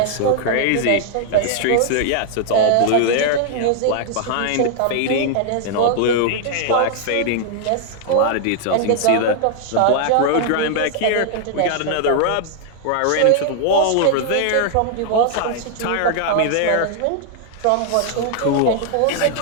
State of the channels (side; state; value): both; different; correlation 0.00